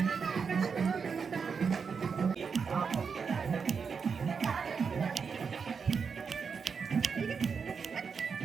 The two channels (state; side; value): quieter; left; 5.8 dB